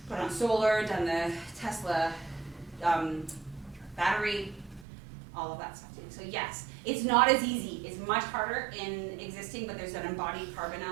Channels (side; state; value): left; drops out; at 4.9 s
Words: put on solar, done the Tesla battery, all of that stuff too. So yes, it's not as easy. It's much harder in existing, but there's an embodied carbon